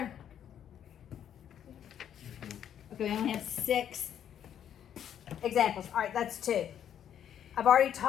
Okay, we only have 6 examples. All right, that's 2. I've already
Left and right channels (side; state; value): right; quieter; 9.6 dB